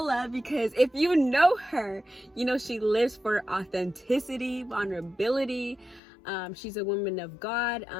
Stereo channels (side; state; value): right; drops out; at 6.0 s